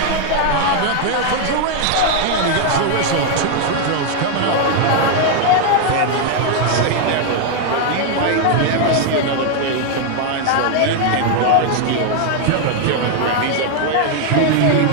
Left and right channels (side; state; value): both; different; correlation 0.00